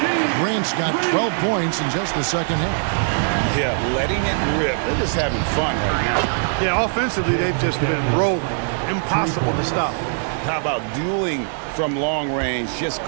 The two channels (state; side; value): silent; left; digital silence